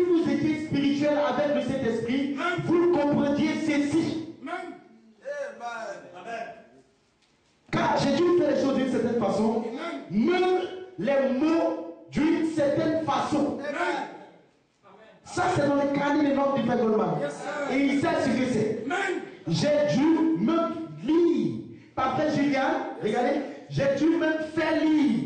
étiez spirituels avec le Saint-Esprit, vous comprendiez ceci. Car j'ai dû faire les choses d'une certaine façon, même les mots d'une certaine façon. Ça, c'est dans le carnet des notes du Frère Goldman. Et il sait ce que c'est. J'ai dû même lire. Par Frère Julian, regardez, j'ai dû même faire lire.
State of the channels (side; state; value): both; identical; correlation 1.00